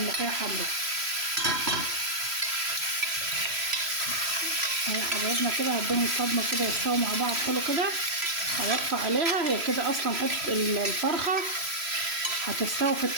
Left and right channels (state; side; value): late; left; 3.0 ms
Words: حمرا. اهي حبايبنا كده هديهم صدمه كده يستووا مع بعض حلو كده. هوطي عليها، هي كده اصلا حته الفرخه هتستوي في